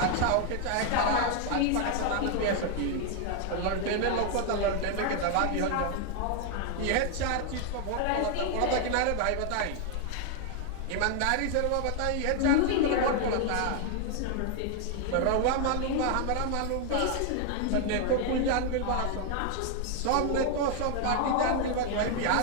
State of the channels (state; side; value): different; both; correlation 0.01